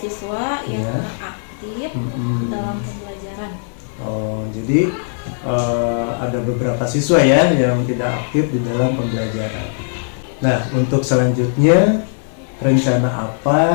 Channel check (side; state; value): right; silent; 58 dB below the other